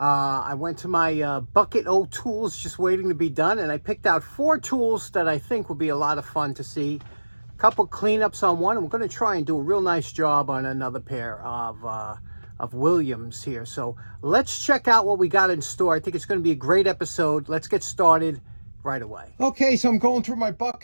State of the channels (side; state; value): both; inverted; correlation -1.00